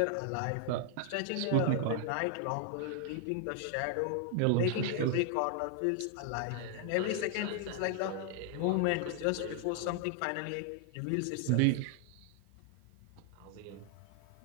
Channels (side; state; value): both; different; correlation 0.00